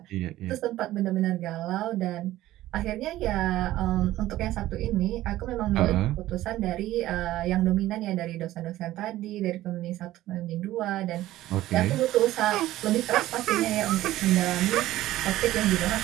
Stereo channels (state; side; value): quieter; left; 15.2 dB